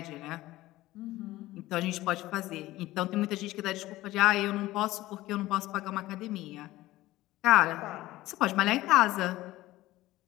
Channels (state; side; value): quieter; right; 17.1 dB